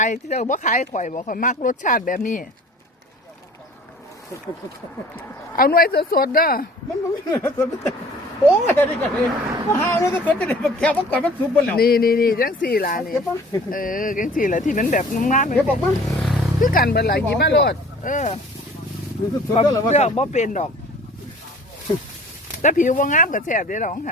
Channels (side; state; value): both; normal; correlation 0.48